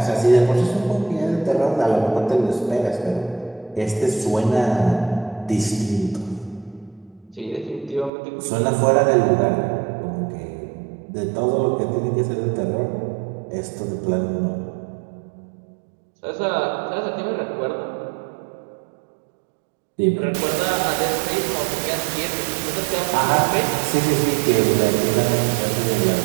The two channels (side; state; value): left; drops out; at 8.1 s